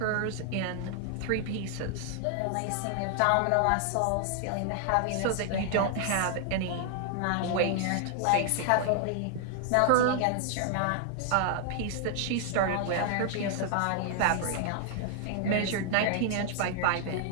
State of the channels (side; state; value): both; different; correlation 0.00